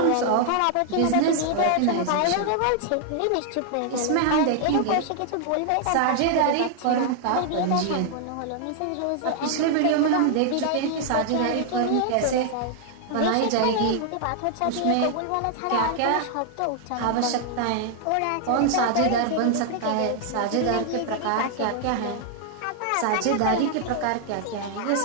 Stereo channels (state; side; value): different; both; correlation 0.00